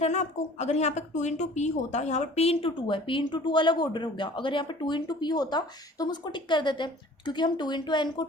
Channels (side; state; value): both; normal; correlation 0.48